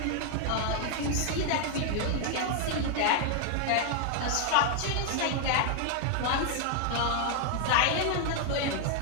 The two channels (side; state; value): both; different; correlation 0.00